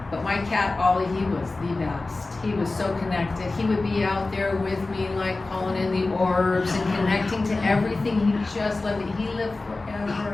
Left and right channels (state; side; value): quieter; right; 3.3 dB